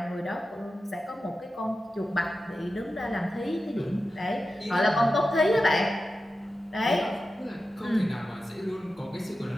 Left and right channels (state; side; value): normal; both; correlation 0.92